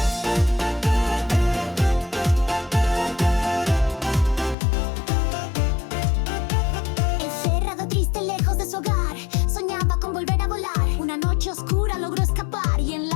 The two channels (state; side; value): drops out; right; at 4.5 s